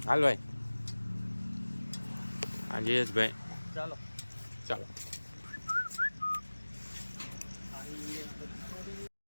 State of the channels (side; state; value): both; inverted; correlation -1.00